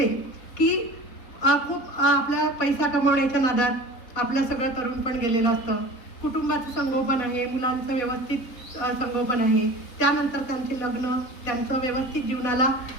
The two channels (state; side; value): late; right; 4.1 ms